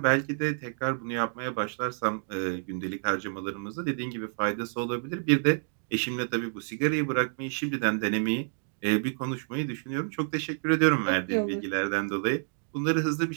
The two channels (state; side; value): silent; left; 59 dB below the other